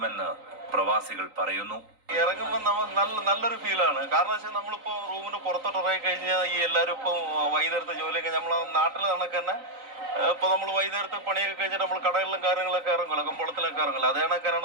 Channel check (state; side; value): late; left; 3.9 ms